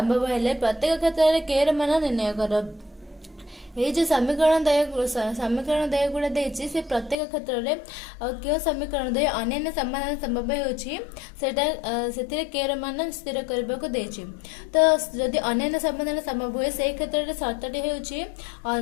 हेले प्रत्येक क्षेत्र में के र मान निर्णय करो। ये जो समीकरण दय गुड़ा देछि से प्रत्येक क्षेत्र में क्यों समीकरण दय अन्य समाधान संभव होछि सेटा सेतिरे के र मान स्थिर करबा को देछि। तो जदि अन्य समाधान संभव होय से क्षेत्र में शर्तटी होछि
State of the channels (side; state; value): right; drops out; at 7.2 s